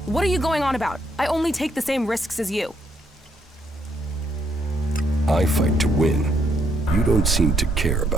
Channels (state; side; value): normal; both; correlation 0.73